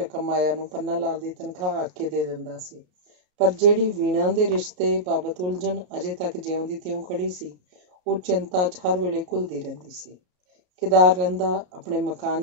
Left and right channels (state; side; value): late; left; 33 ms